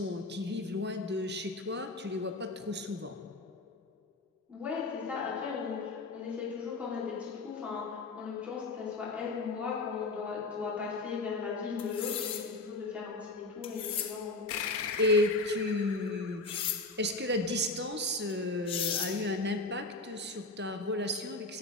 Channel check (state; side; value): quieter; right; 3.2 dB